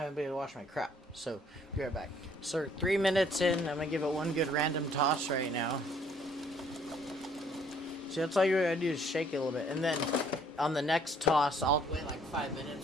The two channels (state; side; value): normal; both; correlation 0.61